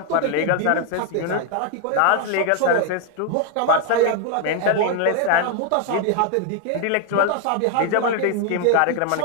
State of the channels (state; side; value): different; both; correlation 0.01